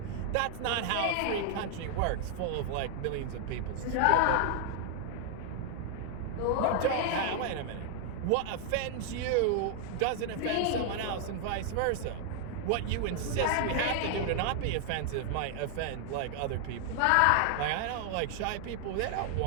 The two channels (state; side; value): different; both; correlation 0.00